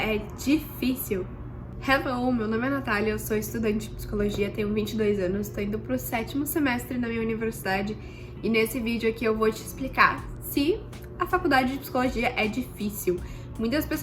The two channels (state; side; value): identical; both; correlation 1.00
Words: difícil? Hello, meu nome é Natália, eu sou estudante de psicologia, tenho 22 anos, estou indo pro 7º semestre na minha universidade e nesse vídeo aqui eu vou te explicar se a faculdade de psicologia é difícil. Muitas